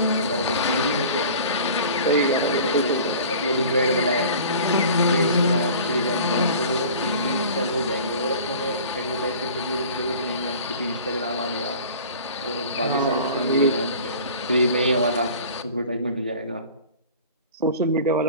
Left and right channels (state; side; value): inverted; both; correlation -0.42